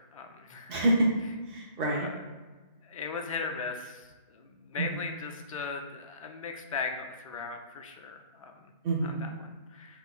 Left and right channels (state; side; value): inverted; both; correlation -0.56